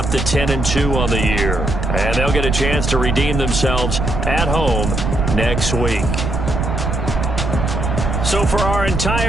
to 10-2 on the year. And they'll get a chance to redeem themselves at home next week. So for our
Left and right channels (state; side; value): noise; right; rumble, 2 dB below the sound